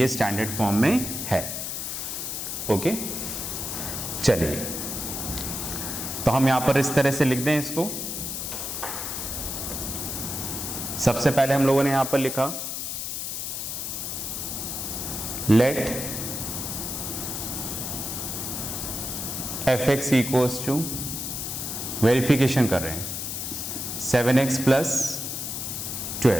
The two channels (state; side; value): noise; left; hiss, 4 dB below the sound